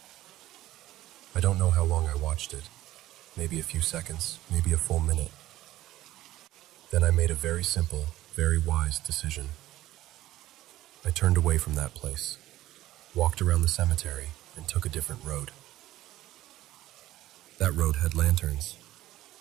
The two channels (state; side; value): quieter; left; 15.2 dB